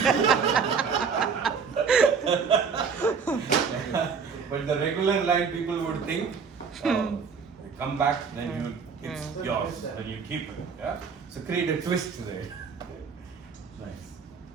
But the regular line, people would think, they come back, then it's yours, then you keep it. Yeah? So create a twist there. Nice.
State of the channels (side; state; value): left; quieter; 5.8 dB